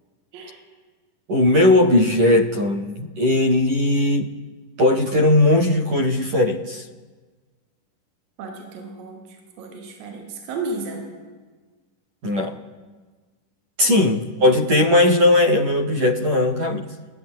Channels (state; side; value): late; left; 10 ms